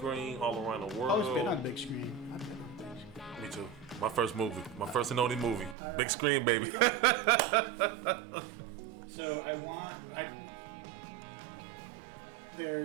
all around the world? I've always been on big screen. I've been on big screen. Me too. My first movie, my first and only movie, All big right. screen, baby. There you go. So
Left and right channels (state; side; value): drops out; left; at 5.8 s